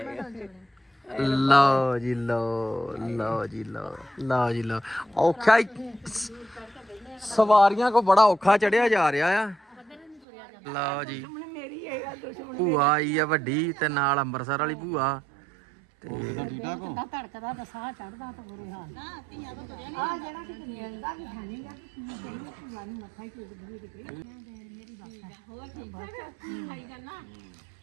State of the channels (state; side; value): drops out; left; at 10.2 s